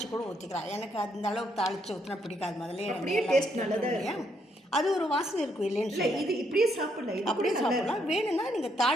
கூட ஊற்றிக்கலாம். எனக்கு அந்த அளவுக்கு தாளித்து ஊற்றினா பிடிக்காது. முதல்ல டேஸ்ட் நல்லதாக அது ஒரு வாசனை இருக்கும் இல்லைன்னு. இது இப்படியே சாப்பிடலாம், அப்படியே சாப்பிடலாம். வேணும்னா நீங்கள்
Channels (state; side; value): normal; both; correlation 0.74